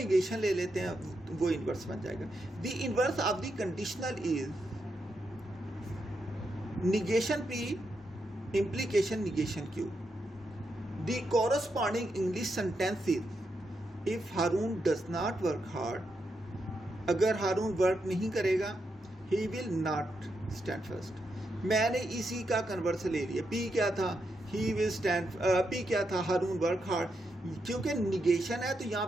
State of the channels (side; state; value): both; normal; correlation 0.83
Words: ले लेते हैं, वो इनवर्स बन जाएगा। The inverse of the conditional is negation P implication negation Q. The corresponding English sentence is if Haroon does not work hard, अगर हारून वर्क नहीं करेगा, he will not stand first. मैंने इसी का कन्वर्स ले लिया। पी क्या था, ही विल स्टैंड, पी क्या था, हारून वर्क हार्ड। क्योंकि निगेशन है तो यहाँ